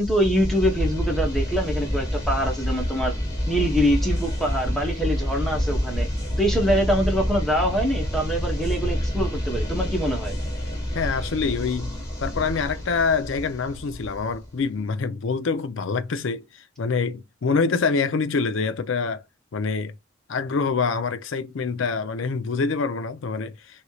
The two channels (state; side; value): normal; both; correlation 0.52